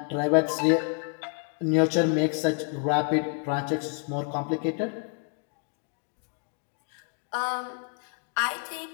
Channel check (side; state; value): right; quieter; 39.6 dB